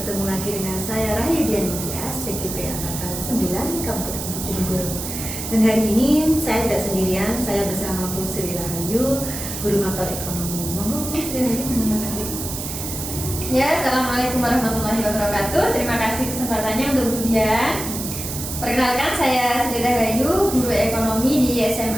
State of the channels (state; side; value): noise; right; hiss, 6 dB below the sound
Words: lagi dengan saya Rahayu Dianitya, TKP Angkatan 9 Kabupaten Bojonegoro. Dan hari ini saya tidak sendirian, saya bersama Bu Sri Rahayu, Guru Mapel Ekonomi. Monggo Bu Sri Rahayu mengenalkan diri. Ya, Assalamualaikum warahmatullahi wabarakatuh. Terima kasih kesempatannya untuk Bu Dian. Perkenalkan, saya Sri Rahayu, Guru Ekonomi di